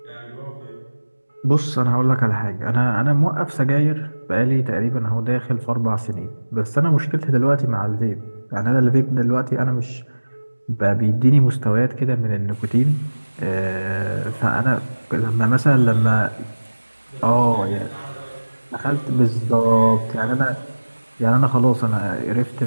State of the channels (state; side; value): inverted; both; correlation -1.00